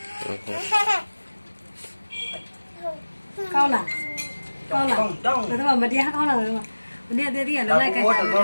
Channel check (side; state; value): both; inverted; correlation -1.00